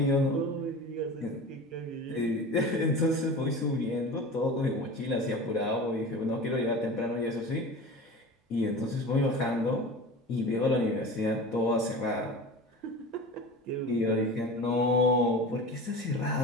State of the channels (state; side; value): normal; both; correlation 0.34